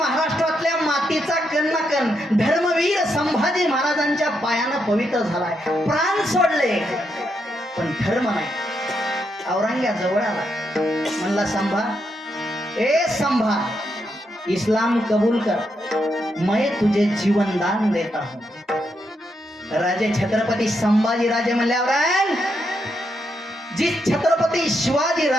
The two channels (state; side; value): normal; both; correlation 0.81